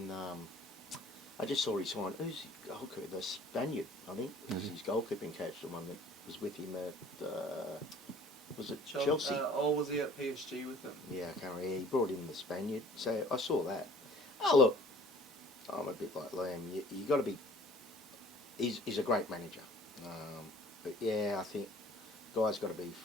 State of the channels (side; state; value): both; normal; correlation 0.52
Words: I just saw he signed. Who's his goalkeeper? The Spaniard, I think. Is his goalkeeping coach, the one that was with him at. Was it Chelsea? Or was he at PSG with them? Yeah, I can't remember. He brought in the Spaniard. So I saw that. Oh look, I'm a bit like Liam. You got to be. He's a great manager. But yeah, I think guys got to be